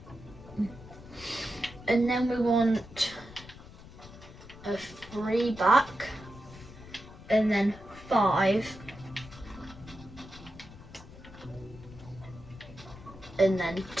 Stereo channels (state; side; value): noise; left; rumble, 17 dB below the sound